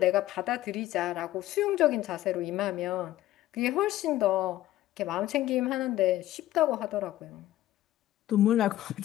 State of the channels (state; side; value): quieter; right; 14.6 dB